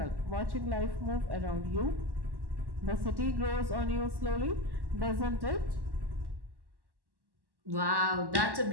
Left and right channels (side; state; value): left; late; 1.1 ms